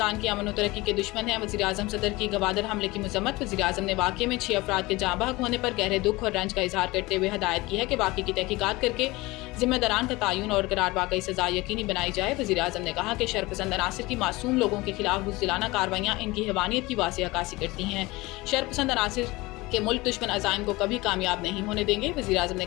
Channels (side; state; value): right; quieter; 21.5 dB